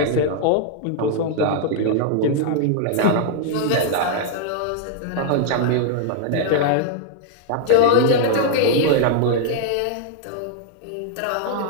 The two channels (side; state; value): both; different; correlation -0.01